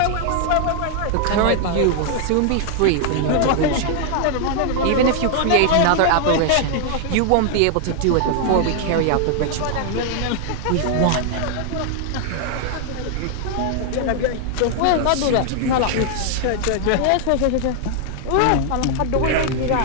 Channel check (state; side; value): different; both; correlation 0.00